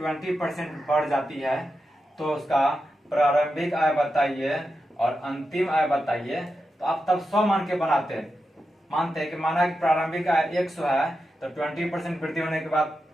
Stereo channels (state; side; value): normal; both; correlation 0.89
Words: बढ़ जाती है तो उसका प्रारंभिक आय बताइए और अंतिम आय बताइए, तो आप तब 100 मान के बनाते हैं। मानते हैं कि माना कि प्रारंभिक आय 100 है तो 20% वृद्धि होने के बाद